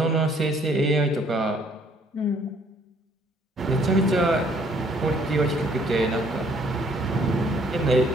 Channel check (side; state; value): both; normal; correlation 0.63